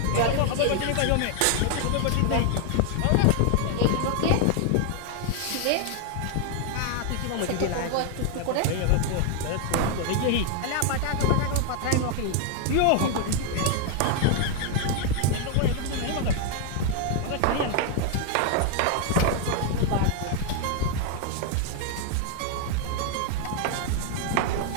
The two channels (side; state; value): both; different; correlation 0.00